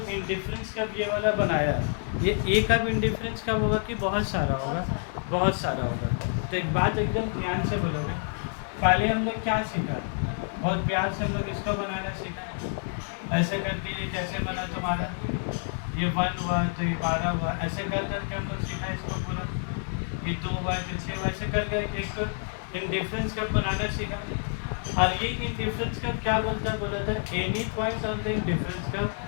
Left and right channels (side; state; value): right; silent; 59 dB below the other